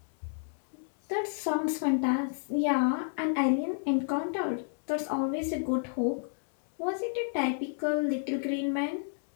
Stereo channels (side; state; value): right; silent; digital silence